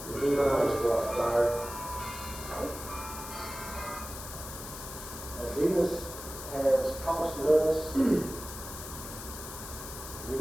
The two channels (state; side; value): noise; left; hiss, 10 dB below the sound